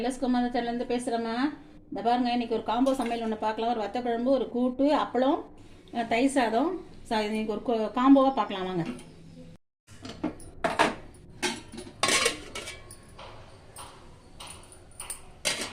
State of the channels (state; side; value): identical; both; correlation 1.00